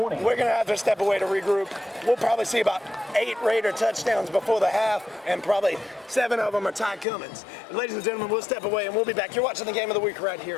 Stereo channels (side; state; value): right; drops out; at 7.1 s